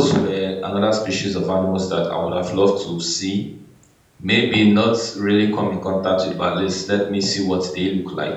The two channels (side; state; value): both; identical; correlation 1.00